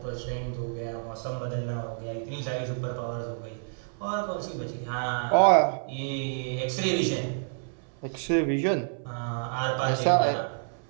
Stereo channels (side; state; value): left; silent; 56 dB below the other